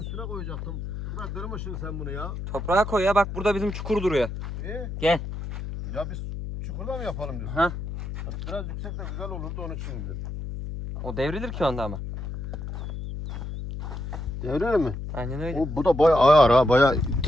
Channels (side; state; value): left; noise; hum, 6 dB below the sound